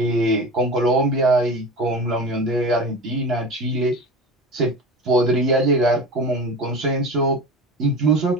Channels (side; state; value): both; normal; correlation 0.31